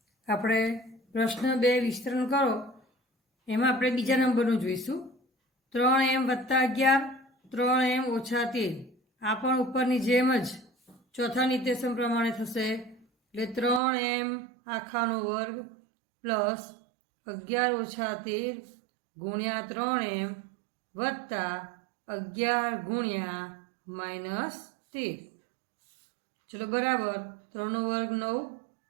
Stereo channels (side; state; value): left; drops out; at 13.8 s